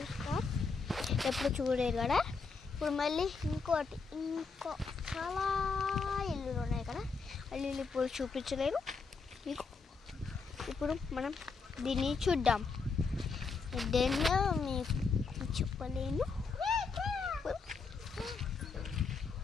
స్టార్స్? ఎప్పుడు చూడలేదు కదా. ఇప్పుడు మళ్ళీ ఇంకో చాలా ఇల్లులు ఉన్నాయి కదా. ఇల్లు ఇప్పుడు చూపించలేను మీకు. ఇప్పుడు మనం దీన్ని చూద్దాం. దేనిలో మీకు చెప్పలేను.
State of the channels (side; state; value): right; quieter; 4.7 dB